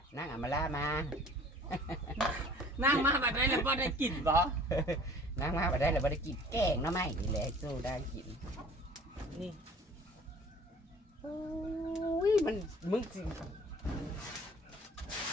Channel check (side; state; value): both; normal; correlation 0.49